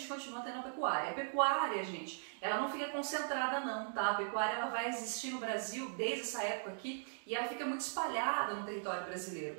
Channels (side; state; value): left; silent; digital silence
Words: continua tendo a pecuária. A pecuária, gente, ela não fica concentrada não, tá? A pecuária ela vai existir no Brasil desde essa época aqui e ela fica muito espalhada no território brasileiro.